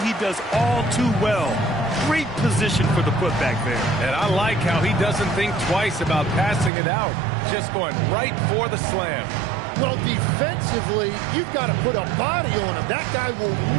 he does all too well. Great position for the putback there. And I like how he doesn't think twice about passing it out. Just going right for the slam. Well, defensively, you've got to put a body on him. That guy will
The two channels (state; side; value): drops out; left; at 6.7 s